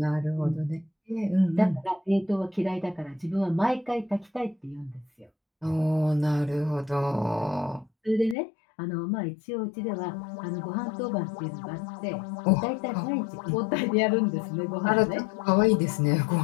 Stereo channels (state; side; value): drops out; right; at 8.3 s